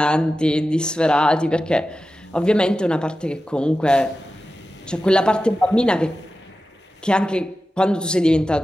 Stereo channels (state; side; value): normal; both; correlation 0.93